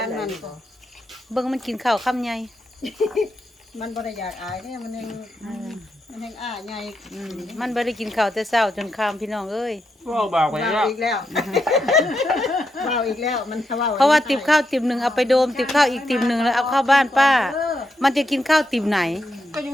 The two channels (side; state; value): both; normal; correlation 0.83